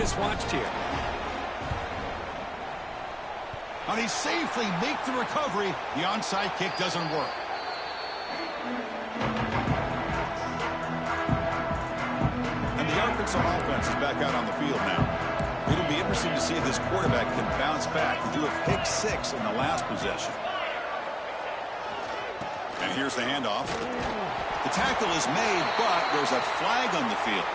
watched here. And he safely makes the recovery. The onside kick doesn't work. And the Arkansas offense is back out on the field now. It'll be interesting to see if this quarterback can bounce back. He threw a pick 6 in the last possession. And here's the handoff. The tackle is made, but there's a flag on the field.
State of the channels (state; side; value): identical; both; correlation 1.00